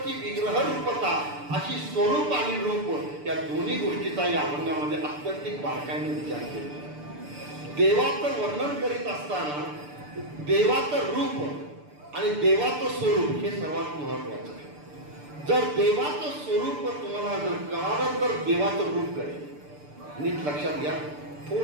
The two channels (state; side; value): late; left; 6.8 ms